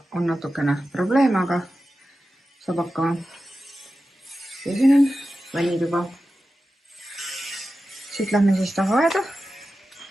on natukene probleeme, aga saab hakkama. Ja siin on vannituba. Siit lähme siis tahaaeda.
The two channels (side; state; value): both; normal; correlation 0.93